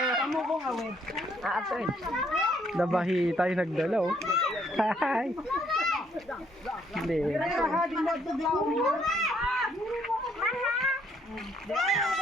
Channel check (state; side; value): normal; both; correlation 0.68